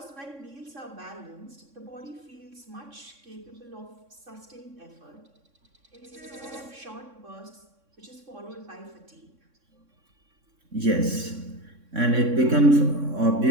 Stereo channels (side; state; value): left; late; 3.6 ms